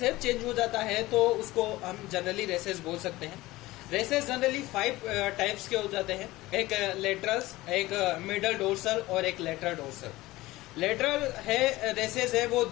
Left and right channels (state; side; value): quieter; right; 18.6 dB